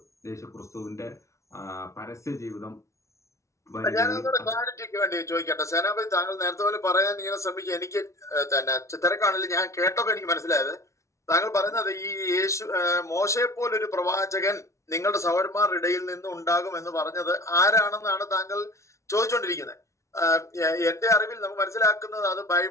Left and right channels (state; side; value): late; right; 0.14 ms